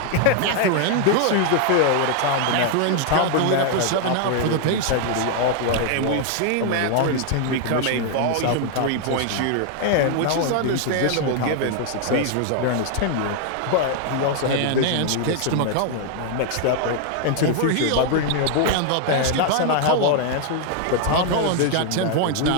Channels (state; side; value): different; both; correlation 0.00